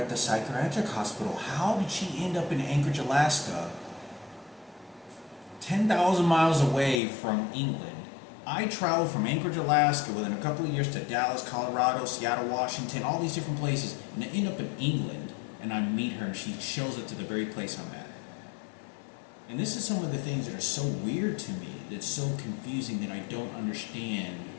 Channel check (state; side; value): drops out; right; at 7.0 s